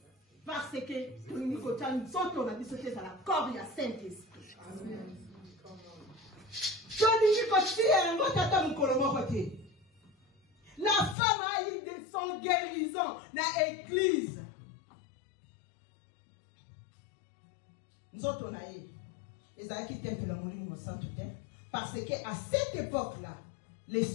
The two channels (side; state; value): right; drops out; at 11.2 s